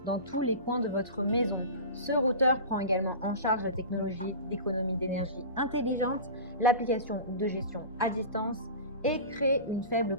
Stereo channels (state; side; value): inverted; both; correlation -0.32